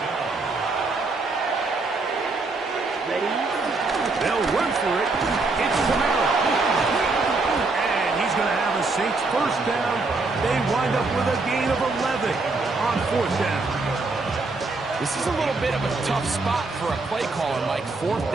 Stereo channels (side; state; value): left; quieter; 3.6 dB